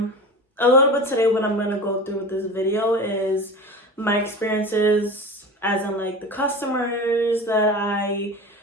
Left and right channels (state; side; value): normal; both; correlation 0.32